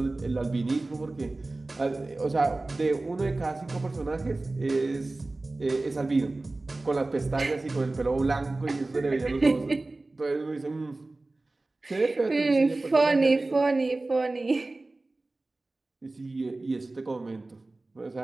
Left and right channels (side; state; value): left; quieter; 3.1 dB